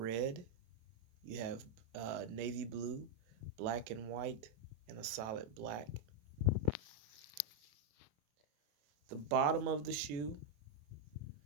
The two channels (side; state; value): left; late; 27 ms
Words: you have navy blue, black and white, and a solid black. The bottom of the shoe